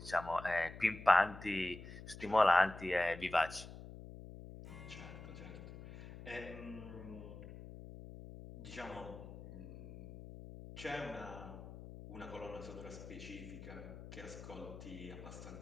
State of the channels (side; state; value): left; noise; hum, 13 dB below the sound